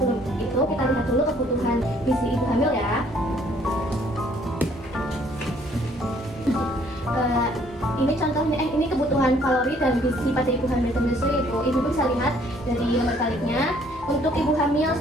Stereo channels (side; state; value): both; normal; correlation 0.62